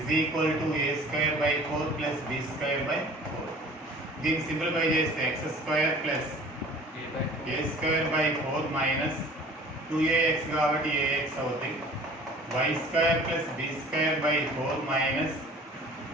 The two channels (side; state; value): both; normal; correlation 0.47